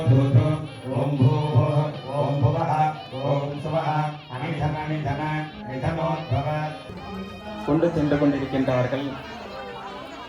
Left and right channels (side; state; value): both; identical; correlation 1.00